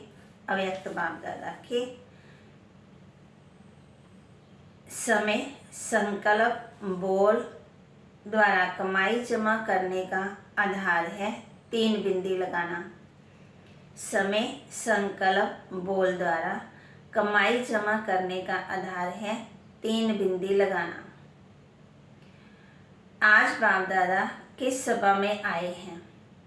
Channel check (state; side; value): identical; both; correlation 1.00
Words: अव्यक्त बाप दादा के समय संकल्प बोल द्वारा कमाई जमा करने का आधार है 3 बिंदी लगाना। समय संकल्प बोल द्वारा कमाई जमा करने का आधार है 3 बिंदी लगाना। आज बाप दादा किस सभा में आए हैं?